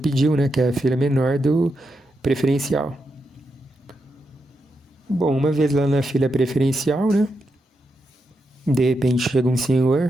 né, que é a fila menor do preferencial. Bom, uma vez lá na fila preferencial, né, de repente chega um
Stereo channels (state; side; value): normal; both; correlation 0.85